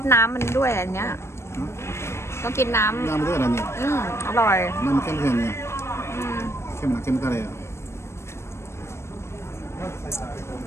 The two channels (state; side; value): late; right; 0.13 ms